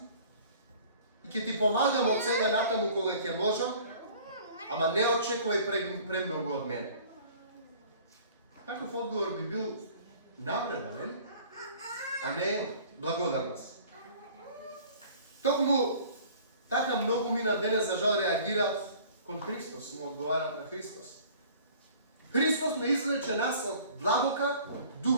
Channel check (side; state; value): both; inverted; correlation -0.49